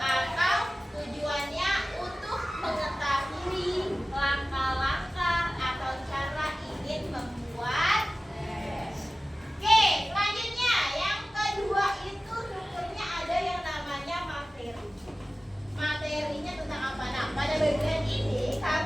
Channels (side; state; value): both; normal; correlation 0.96